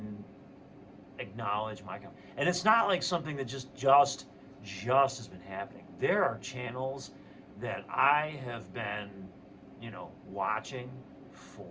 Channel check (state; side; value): identical; both; correlation 1.00